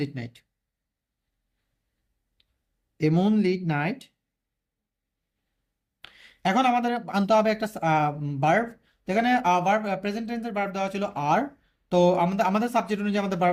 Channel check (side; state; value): both; identical; correlation 1.00